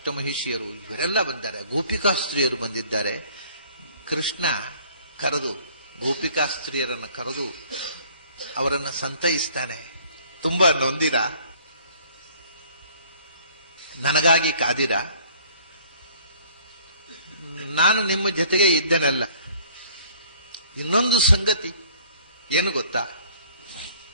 ಇವರೆಲ್ಲ ಬಂದಿದ್ದಾರೆ, ಗೋಪಿಕಾಸ್ತ್ರೀಯರು ಬಂದಿದ್ದಾರೆ. ಕೃಷ್ಣ ಕರೆದು ಗೋಪಿಕಾಸ್ತ್ರೀಯರನ್ನು ಕರೆದು ಅವರನ್ನು ಸಂತೈಸ್ತಾನೆ. ತುಂಬಾ ನೊಂದಿರ, ನನಗಾಗಿ ಕಾದಿರ, ನಾನು ನಿಮ್ಮ ಜೊತೆಗೆ ಇದ್ದೇನಲ್ಲ. ಇನ್ನೊಂದು ಸಂಗತಿ ಏನು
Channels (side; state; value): both; inverted; correlation -0.56